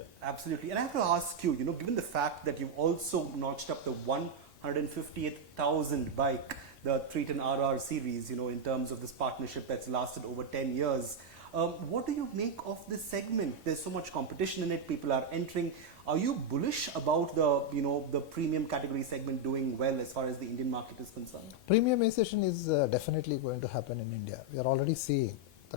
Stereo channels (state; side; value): normal; both; correlation 0.01